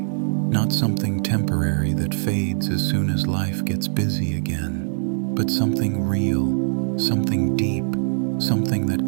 something temporary that fades as soon as life gets busy again, but something real, something deep, something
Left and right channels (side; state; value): left; silent; 64 dB below the other